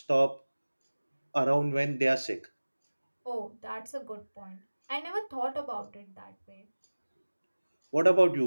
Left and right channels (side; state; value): both; inverted; correlation -1.00